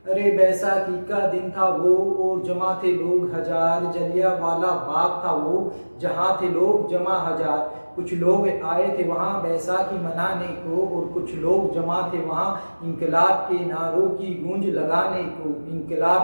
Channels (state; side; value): inverted; both; correlation -1.00